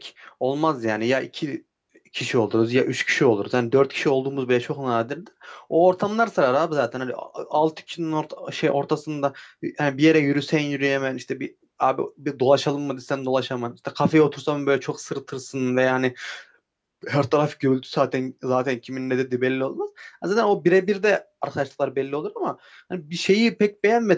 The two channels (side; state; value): both; identical; correlation 1.00